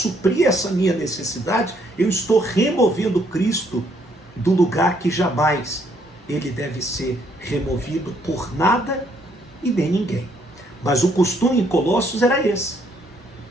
essa minha necessidade, eu estou removendo Cristo do lugar que jamais ele deve ser removido por nada e nem ninguém. Mas o costume em Colossos era esse.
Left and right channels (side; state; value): both; normal; correlation 0.69